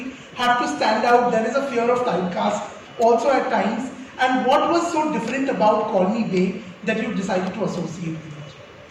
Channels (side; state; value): both; identical; correlation 1.00